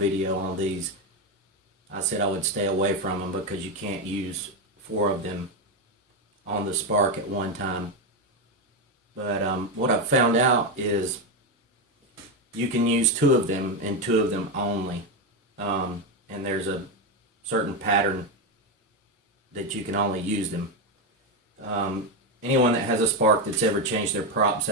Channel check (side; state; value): both; normal; correlation 0.10